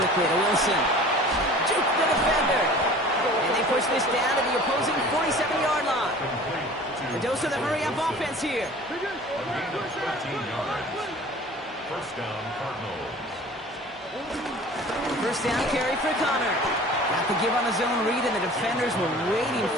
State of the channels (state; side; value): normal; both; correlation 0.44